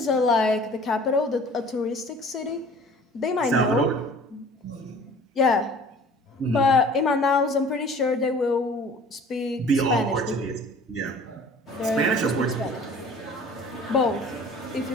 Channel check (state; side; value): normal; both; correlation 0.48